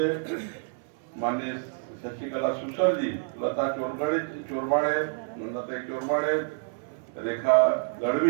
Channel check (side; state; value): left; silent; 59 dB below the other